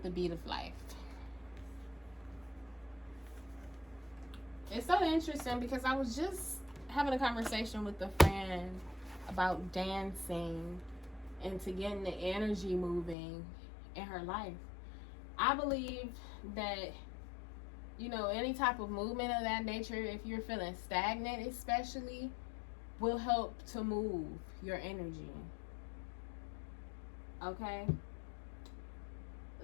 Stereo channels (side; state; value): right; drops out; at 13.2 s